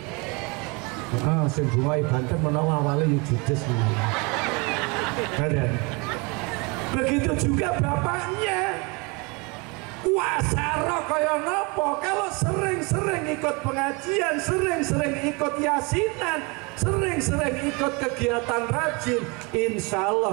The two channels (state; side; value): quieter; left; 29.1 dB